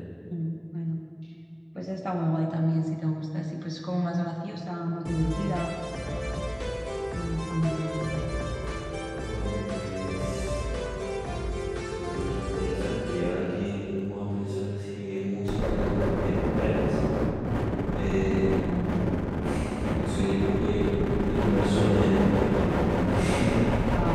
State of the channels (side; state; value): both; identical; correlation 1.00